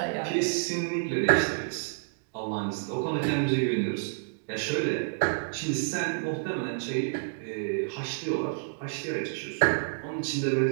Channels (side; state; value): left; silent; digital silence